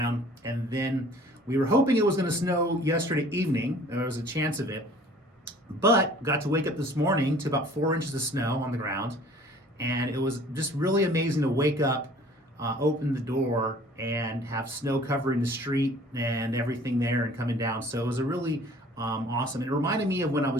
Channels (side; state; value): both; normal; correlation 0.51